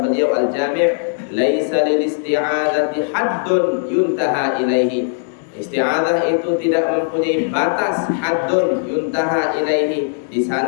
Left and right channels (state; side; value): silent; right; digital silence